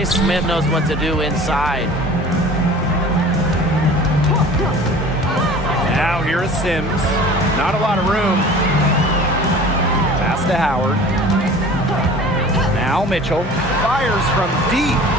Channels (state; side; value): normal; both; correlation 0.43